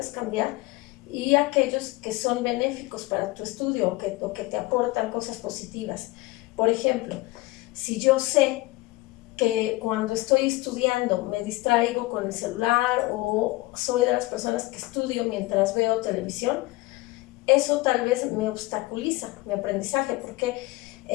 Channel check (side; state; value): right; quieter; 20.6 dB